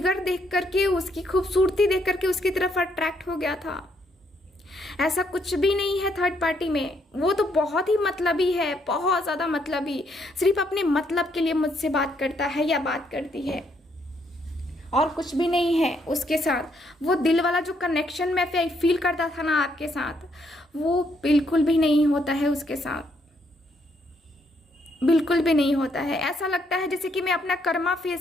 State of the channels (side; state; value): both; normal; correlation 0.73